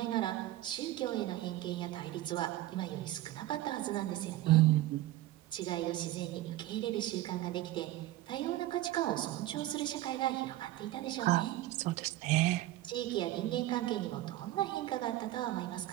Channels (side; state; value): left; quieter; 15.5 dB